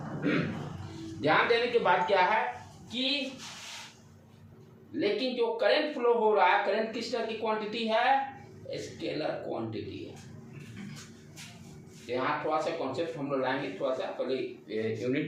ध्यान देने की बात क्या है कि लेकिन जो करंट फ्लो हो रहा है, करंट किस तरह की क्वांटिटी है? स्केलर क्वांटिटी है। यहाँ थोड़ा सा कॉन्सेप्ट हम लोग लाएंगे, थोड़ा सा पहले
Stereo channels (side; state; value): both; identical; correlation 1.00